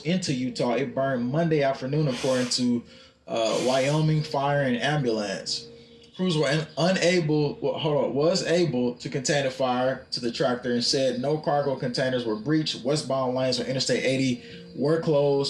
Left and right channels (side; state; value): both; identical; correlation 1.00